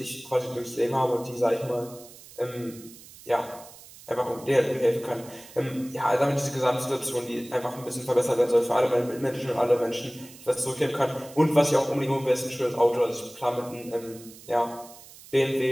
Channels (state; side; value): noise; right; hiss, 19 dB below the sound